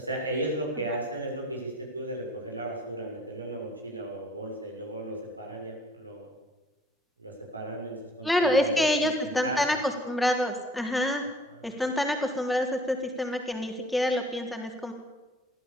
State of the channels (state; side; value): normal; both; correlation 0.53